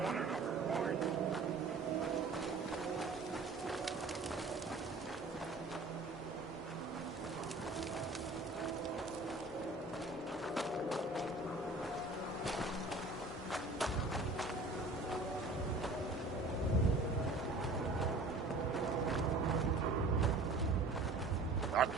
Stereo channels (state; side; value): quieter; left; 3.2 dB